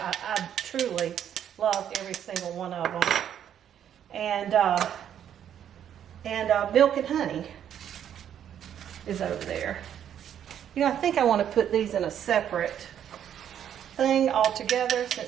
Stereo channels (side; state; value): left; quieter; 9.6 dB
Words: truly love every single one of them. And Milk and Honey is over there. You know, I think I want to put these in a separate thing altogether